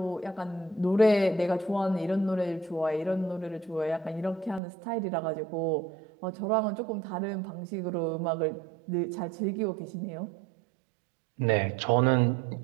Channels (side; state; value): left; drops out; at 4.6 s